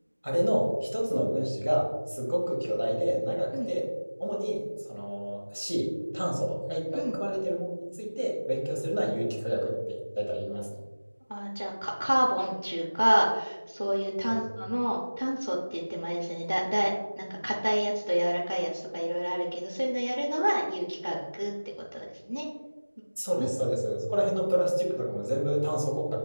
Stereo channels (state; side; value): inverted; both; correlation -1.00